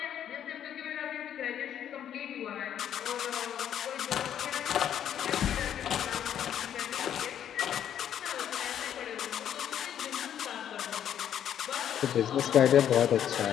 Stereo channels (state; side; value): quieter; right; 9.9 dB